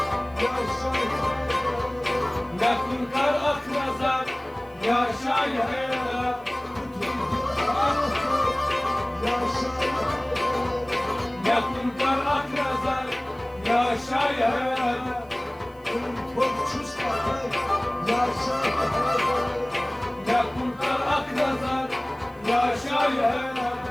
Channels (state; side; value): noise; right; hiss, 30 dB below the sound